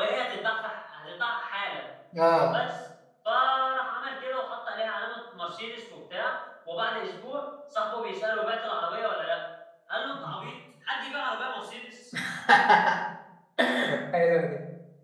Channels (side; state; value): both; identical; correlation 1.00